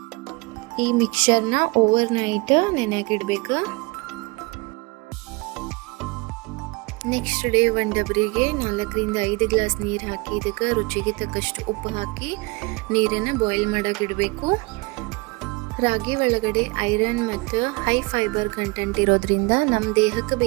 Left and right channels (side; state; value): left; quieter; 26.2 dB